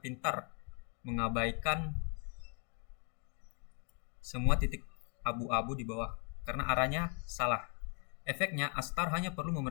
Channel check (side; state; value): right; quieter; 39.0 dB